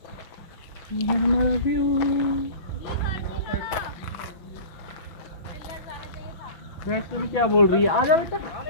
ये हमारा व्यू। वैष्णवी क्या बोल रही है? आ जाओ बेटा।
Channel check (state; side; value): late; right; 6.1 ms